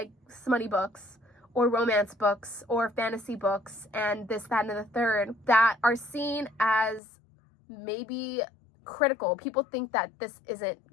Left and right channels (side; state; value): right; drops out; at 7.0 s